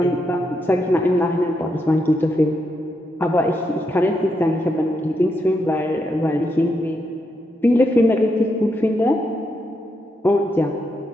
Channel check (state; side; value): normal; both; correlation 0.81